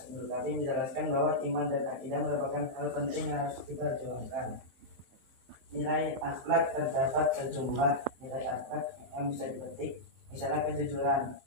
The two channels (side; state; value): left; late; 23 ms